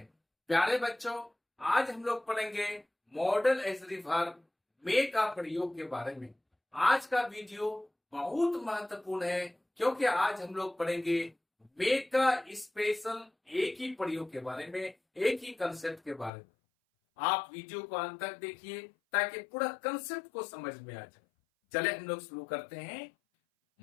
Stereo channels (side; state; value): right; drops out; at 16.3 s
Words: प्यारे बच्चों, आज हम लोग पढ़ेंगे मॉडल एज वर्ब मे का प्रयोग के बारे में। आज का वीडियो बहुत महत्वपूर्ण है क्योंकि आज हम लोग पढ़ेंगे मे का स्पेशल एक ही प्रयोग के बारे में, एक ही कंसेप्ट के बारे में। आप वीडियो को अंत तक देखिए ताकि पूरा कंसेप्ट को समझ में आ जाए। चले हम लोग शुरू करते हैं।